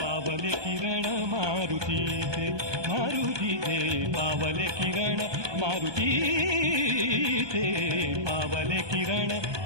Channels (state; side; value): late; left; 1.2 ms